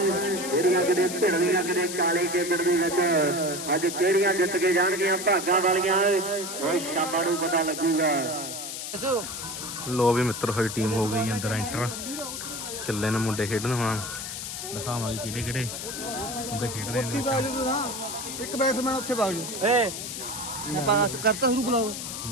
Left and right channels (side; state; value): left; noise; hiss, 7 dB below the sound